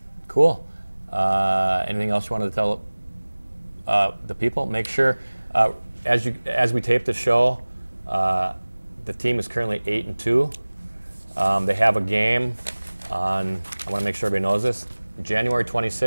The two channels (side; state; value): both; inverted; correlation -1.00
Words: Cool. Anything else you wanted to tell the people? Make sure, as we tape the show, the team is currently 8-2. They have a game on, I want to make sure everybody knows this, January